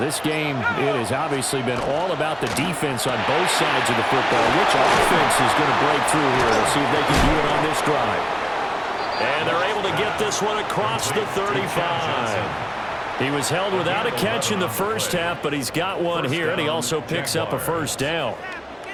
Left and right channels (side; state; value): both; identical; correlation 1.00